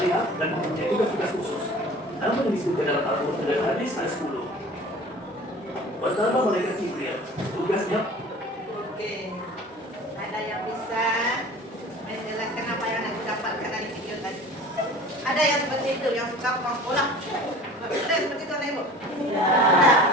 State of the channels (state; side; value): normal; both; correlation 0.43